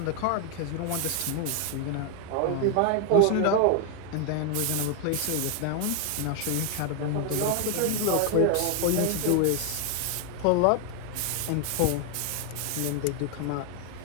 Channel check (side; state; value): both; different; correlation 0.00